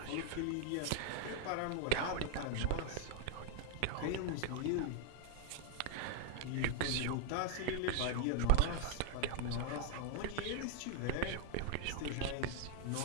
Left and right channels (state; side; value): different; both; correlation -0.01